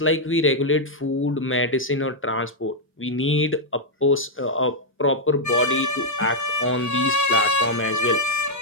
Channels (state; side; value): normal; both; correlation -0.03